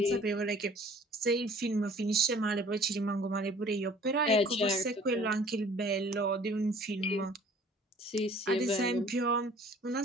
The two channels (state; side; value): normal; both; correlation 0.51